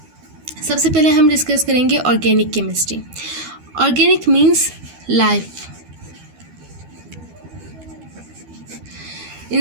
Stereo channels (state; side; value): late; left; 12 ms